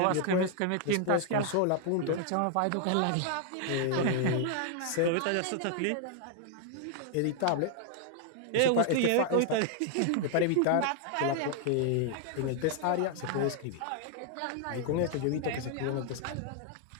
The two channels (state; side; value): different; both; correlation 0.00